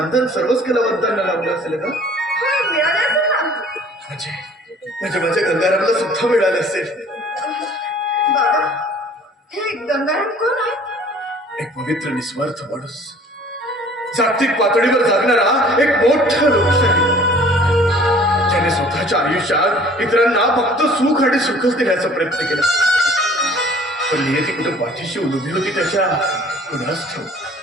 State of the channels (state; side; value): normal; both; correlation 0.52